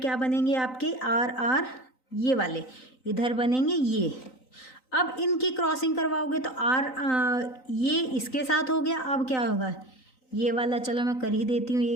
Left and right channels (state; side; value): late; right; 3.9 ms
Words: क्या बनेंगे आपके, आर ये वाले इधर बनेंगे ये। अब इनकी क्रॉसिंग करवाओगे तो ये इसके साथ हो गया। अब क्या होगा, ये वाला चलो मैं कर ही देती हूँ, ये